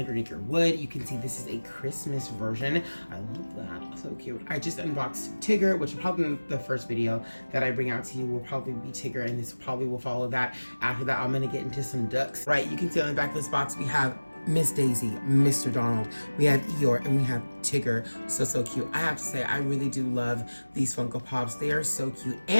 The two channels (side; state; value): both; inverted; correlation -1.00